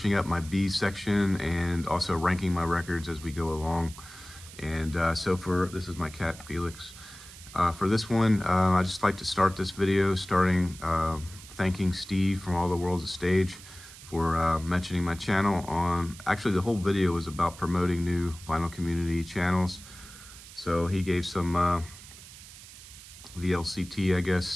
up my B section and also ranking my records as we go along. And so this is my cat Felix. For this one, I just like to start this video thanking Steve from All the World's a Stage for mentioning my channel actually the whole video was about promoting new vinyl community channels. So he gave some VLCT, I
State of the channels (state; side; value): noise; right; hiss, 17 dB below the sound